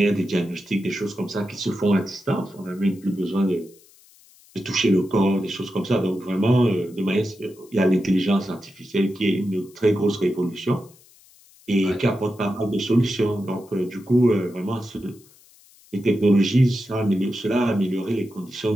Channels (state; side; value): noise; left; hiss, 27 dB below the sound